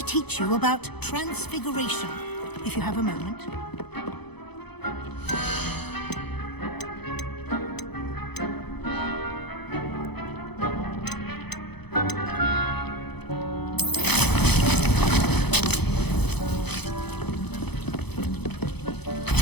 teach you about transfiguration, if you have a moment.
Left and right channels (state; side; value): late; right; 0.98 ms